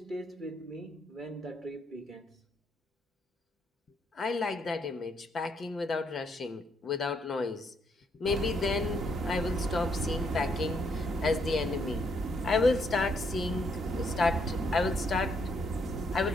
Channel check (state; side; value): normal; both; correlation 0.73